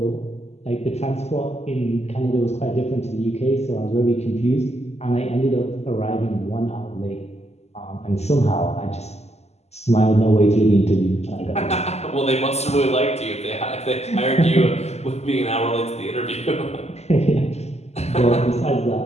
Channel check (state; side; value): late; right; 0.31 ms